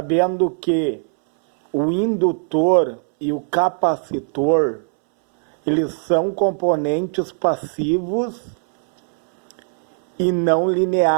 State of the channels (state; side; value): silent; left; 66 dB below the other